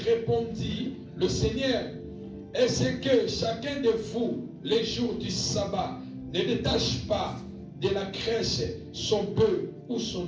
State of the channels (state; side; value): identical; both; correlation 1.00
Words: le Seigneur: est-ce que chacun de vous, les jours du sabbat, ne détache pas de la crèche son bœuf ou